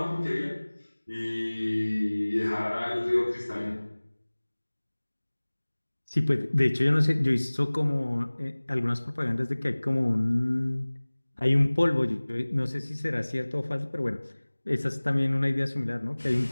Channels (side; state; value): both; inverted; correlation -1.00